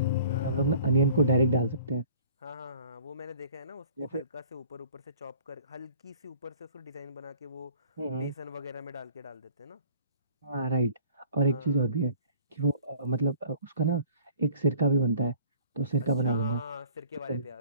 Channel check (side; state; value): both; inverted; correlation -0.51